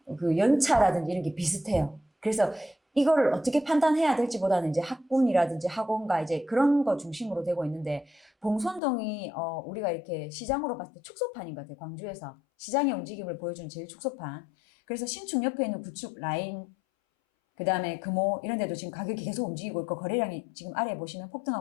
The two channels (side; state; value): right; drops out; at 8.8 s